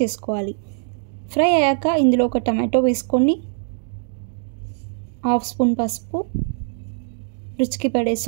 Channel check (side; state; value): left; silent; digital silence